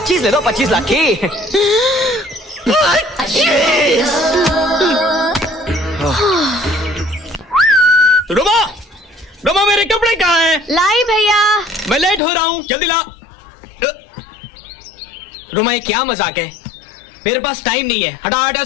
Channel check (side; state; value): right; drops out; at 12.2 s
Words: ले लो, 25 लाख की। रुमा, रुमा मेरे कपड़े कहाँ हैं? लाई भैया। मैं लेट हो रहा हूँ, जल्दी ला। रुमा ये क्या मजाक है? मेरे पास टाइम नहीं है, हटा हटा